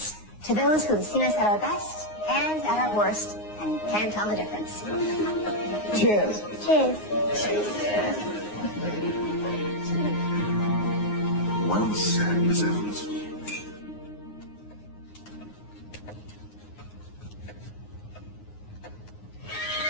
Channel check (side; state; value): right; late; 9.6 ms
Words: to those who have seen us at our best and at our worst and can't tell the difference. Cheers. Cheers. Well said, Miss Evans.